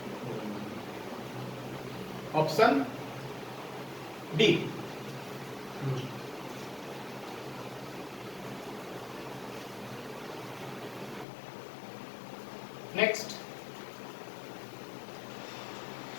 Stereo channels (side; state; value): right; drops out; at 11.2 s